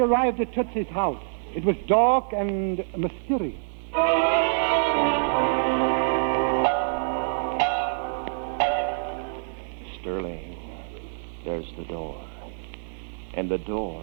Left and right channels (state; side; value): silent; left; digital silence